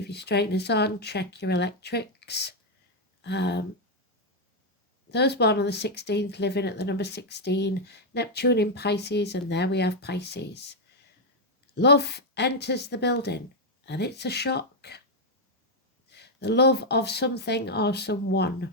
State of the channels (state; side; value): normal; both; correlation 0.00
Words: your straighteners on, check your electrics. Those born on the 16th, living at the number 16, Neptune in Pisces, and there we have Pisces. Love enters the building. And it's a shock. The love of something or someone.